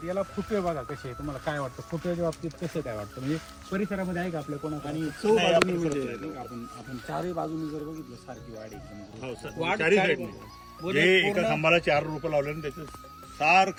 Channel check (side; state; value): both; identical; correlation 1.00